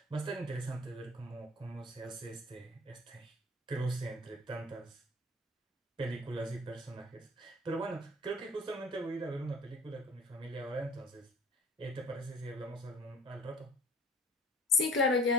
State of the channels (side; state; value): both; normal; correlation 0.47